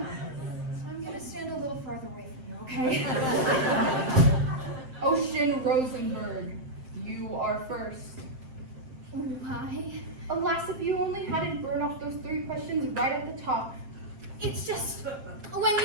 I'm gonna stand a little farther away from you, okay? Ocean Rosenberg, you are first. Why? Alas, if you only hadn't burned off those 3 questions right at the top. It's just, when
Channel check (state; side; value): late; left; 7.6 ms